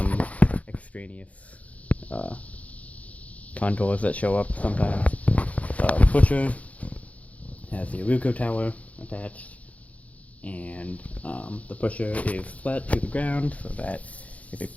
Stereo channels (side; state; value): right; late; 0.068 ms